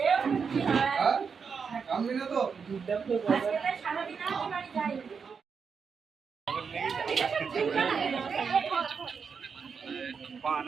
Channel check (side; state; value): left; quieter; 5.9 dB